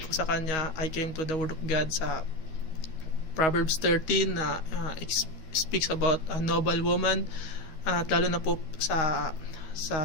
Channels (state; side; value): late; right; 13 ms